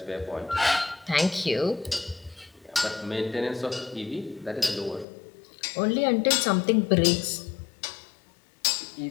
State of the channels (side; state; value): right; drops out; at 5.1 s